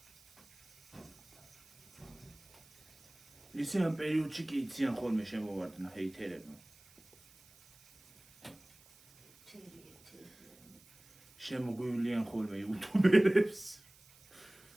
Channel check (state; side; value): noise; right; hiss, 26 dB below the sound